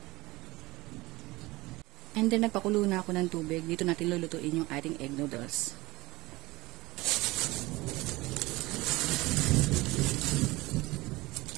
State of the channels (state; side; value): quieter; left; 20.6 dB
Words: And then, nagpakulo na ako ng tubig. Dito natin lulutuin yung ating egg noodles.